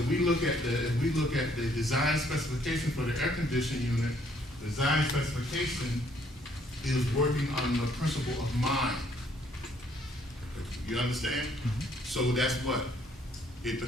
look at the design specification for the air conditioning unit, the design specification is working on the principle of mind. You understand? So that's what? It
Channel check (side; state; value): both; normal; correlation 0.65